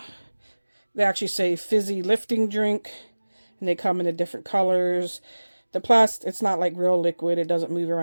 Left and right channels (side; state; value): both; inverted; correlation -1.00